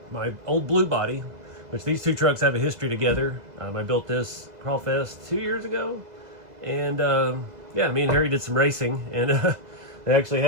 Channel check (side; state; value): left; late; 2.0 ms